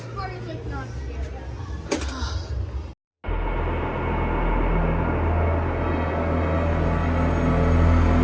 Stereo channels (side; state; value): both; identical; correlation 1.00